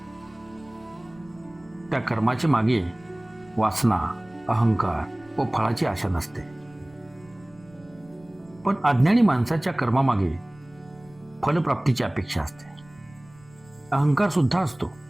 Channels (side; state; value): right; noise; rumble, 26 dB below the sound